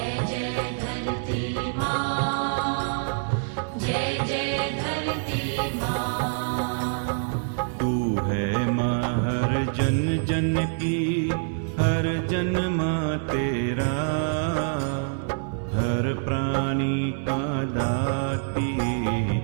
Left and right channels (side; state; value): left; silent; digital silence